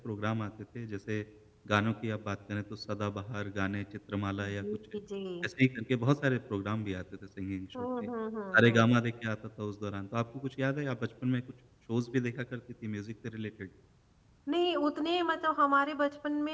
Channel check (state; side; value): identical; both; correlation 1.00